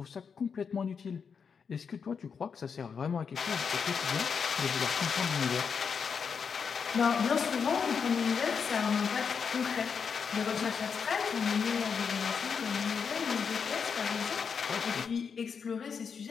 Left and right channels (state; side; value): quieter; right; 6.2 dB